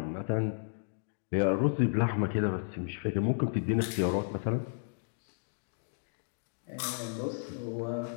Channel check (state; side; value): silent; right; digital silence